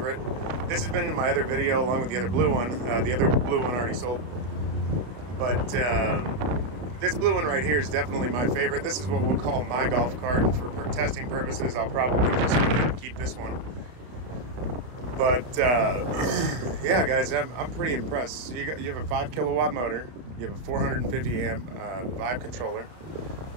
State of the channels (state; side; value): late; left; 32 ms